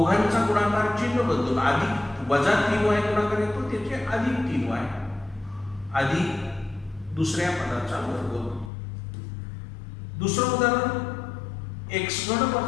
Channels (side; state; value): right; drops out; at 8.7 s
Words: गुणाकार चिन्ह बदलून अधिक वजा 3y गुणाकार येतो त्याचे अधिक 3y अधिक दुसऱ्या पदाचा वर्ग. दुसरं उदाहरण एक्स घन